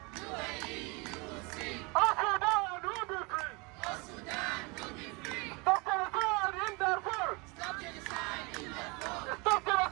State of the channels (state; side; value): quieter; left; 28.1 dB